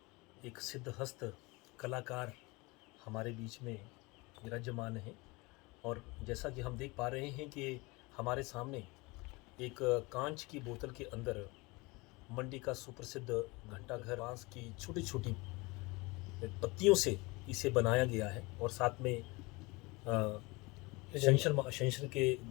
एक सिद्धहस्त कलाकार हमारे बीच में विराजमान हैं। और जैसा कि हम देख पा रहे हैं कि हमारे सामने एक कांच की बोतल के अंदर मंडी का सुप्रसिद्ध घंटाघर बांस की छोटी छोटी पत्तियों से इसे बनाया गया है। और साथ में शंकर के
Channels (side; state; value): right; quieter; 24.8 dB